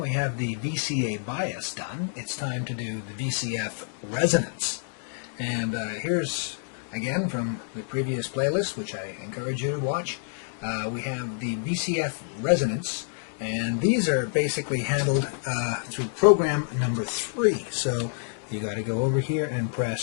have the VCA bias done. It's time to do the VCF resonance. And here's, again, from the previous playlist, which I encourage you to watch, we have the VCF resonance. And these are basically handled through program number 3. So you got to go over here and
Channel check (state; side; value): silent; right; digital silence